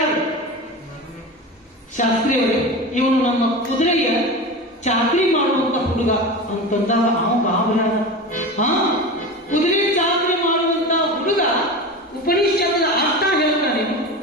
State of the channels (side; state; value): both; normal; correlation 0.28